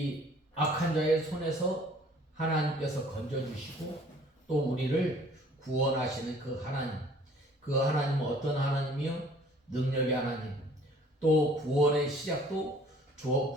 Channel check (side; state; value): both; normal; correlation 0.55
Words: 악한 자의 손에서 하나님께서 건져주시고 또 우리를 구원하시는 그 하나님은 어떤 하나님이요? 능력의 하나님, 또 구원의 시작도